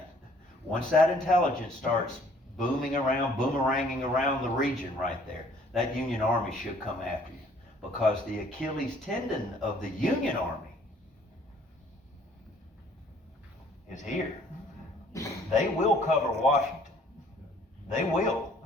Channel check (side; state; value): both; normal; correlation 0.59